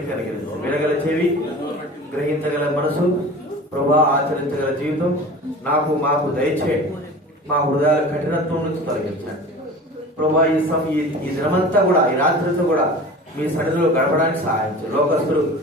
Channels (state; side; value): normal; both; correlation 0.38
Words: కనికరించండి. వినగల చెవి, గ్రహించగల మనసు, ప్రభా ఆచరించగల జీవితం నాకు మాకు దయచేయండి. మా హృదయాల కఠినత్వం నుంచి తొలగించండి ప్రభా. ఈ దినమంతా కూడా, ఈ రాత్రంతా కూడా మీ సన్నిధిలో గడపడానికి సహాయం చేయండి. లోకస్తులు